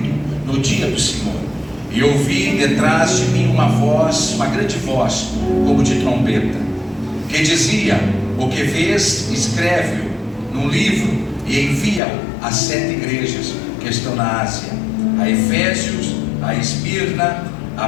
no dia do Senhor, e ouvi detrás de mim uma voz, uma grande voz, como de trombeta, que dizia: o que vês, escreve-o num livro e envia-o às 7 igrejas que estão na Ásia: a Efésios, a Esmirna, a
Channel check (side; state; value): right; drops out; at 12.0 s